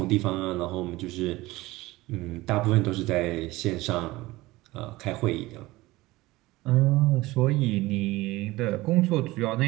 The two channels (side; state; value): left; quieter; 19.5 dB